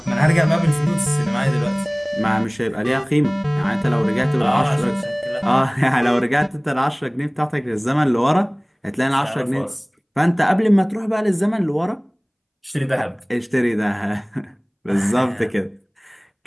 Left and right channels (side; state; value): both; identical; correlation 1.00